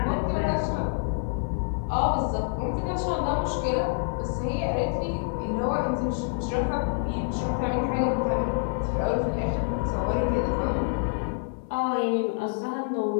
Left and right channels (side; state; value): right; silent; 60 dB below the other